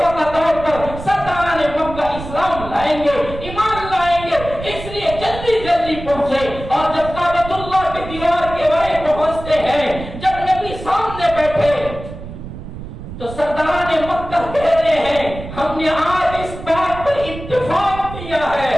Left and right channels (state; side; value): noise; right; rumble, 11 dB below the sound